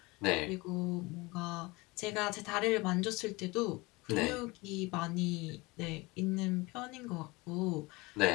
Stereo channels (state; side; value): quieter; right; 23.8 dB